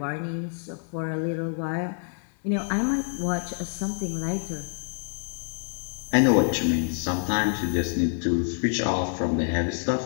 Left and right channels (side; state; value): right; silent; 60 dB below the other